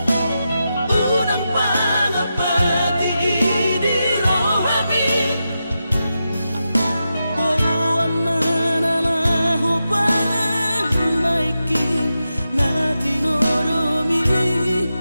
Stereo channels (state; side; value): inverted; both; correlation -0.89